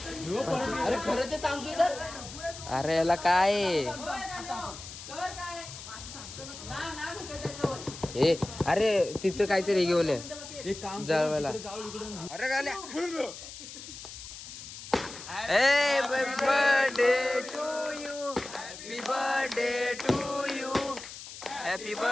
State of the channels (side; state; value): left; noise; hiss, 13 dB below the sound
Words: अरे खरं ते सांगतोय तर अरे याला काय आहे? ए अरे तिथं काहीतरी घेऊन ये एक काम जळवायला अरे गाण्या happy birthday to you happy birthday to you happy